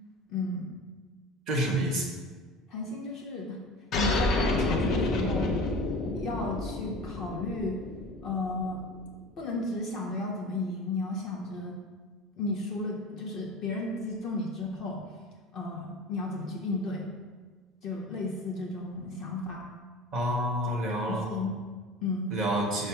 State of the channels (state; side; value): normal; both; correlation 0.36